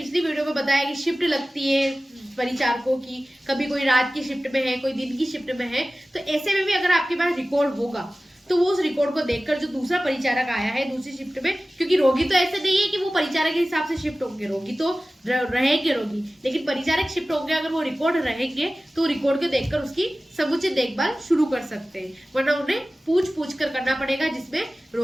वीडियो में बताया कि शिफ्ट लगती है परिचारकों की, कभी कोई रात की शिफ्ट में है, कोई दिन की शिफ्ट में है, तो ऐसे में भी अगर आपके पास रिकॉर्ड होगा तो वो उस रिकॉर्ड को देखकर जो दूसरा परिचारक आया है दूसरी शिफ्ट में, क्योंकि रोगी तो ऐसे नहीं है कि वो परिचारक के हिसाब से शिफ्ट होंगे, रोगी तो रहेंगे रोगी, लेकिन परिचारक शिफ्ट होंगे, अगर वो रिकॉर्ड रहेंगे तो रिकॉर्ड को देखकर उसकी समुचित देखभाल शुरू कर सकते हैं, वरना उन्हें पूछ कर करना पड़ेगा, जिसमें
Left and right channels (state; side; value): normal; both; correlation 0.96